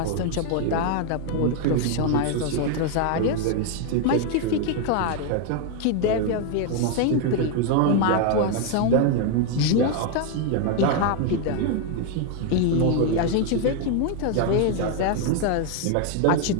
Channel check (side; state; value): both; different; correlation 0.00